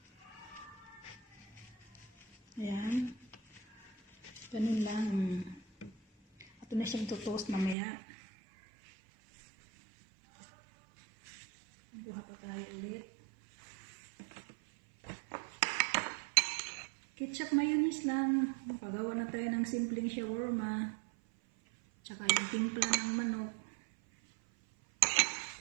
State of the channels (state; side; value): drops out; left; at 7.8 s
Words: Ayan. Ganun lang. Ito na siyang tutoast mamaya. Buha pa tayo ulit. Ketchup mayonnaise lang. Makagawa na tayo ng simpleng shawarma. Tsaka yung timpla ng manok.